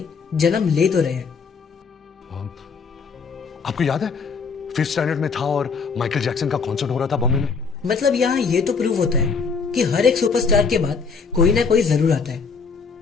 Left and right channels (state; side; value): quieter; right; 5.3 dB